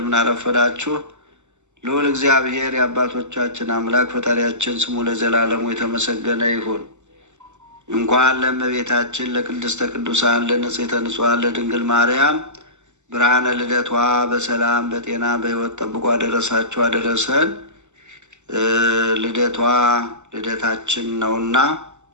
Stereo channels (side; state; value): left; late; 0.84 ms